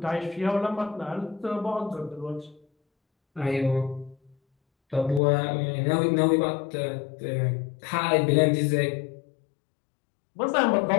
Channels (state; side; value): drops out; right; at 5.2 s